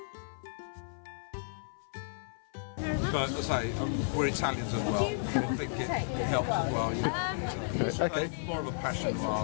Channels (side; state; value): right; silent; 56 dB below the other